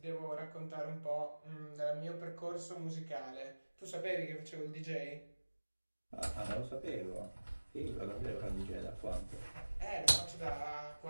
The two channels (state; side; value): inverted; both; correlation -1.00